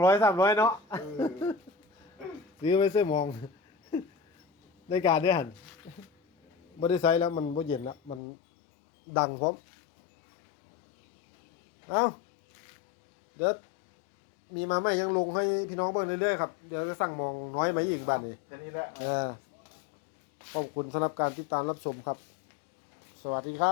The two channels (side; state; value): right; drops out; at 8.2 s